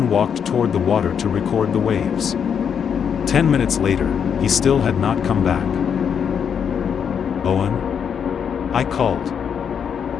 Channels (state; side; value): quieter; right; 7.5 dB